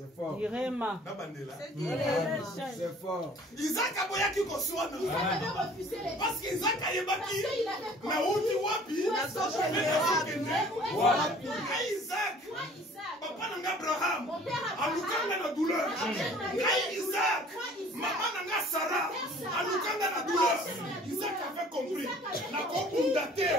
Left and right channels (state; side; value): normal; both; correlation 0.51